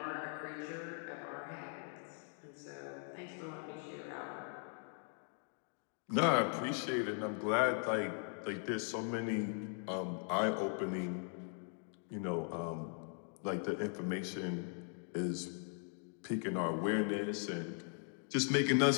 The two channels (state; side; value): silent; right; 51 dB below the other